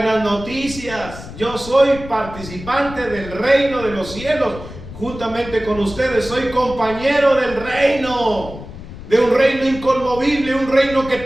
noticias. Yo soy participante del reino de los cielos, juntamente con ustedes. Soy compañero del reino, de un reino inconmovible, un reino que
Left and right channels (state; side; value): noise; left; rumble, 13 dB below the sound